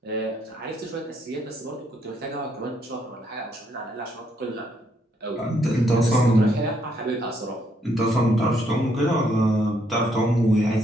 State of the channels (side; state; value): both; normal; correlation 0.72